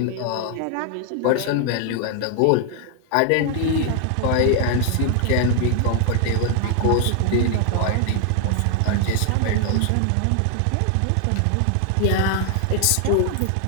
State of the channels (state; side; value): different; both; correlation 0.00